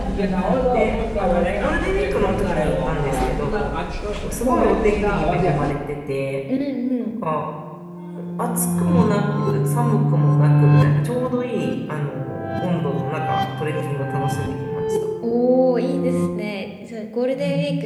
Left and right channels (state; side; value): identical; both; correlation 1.00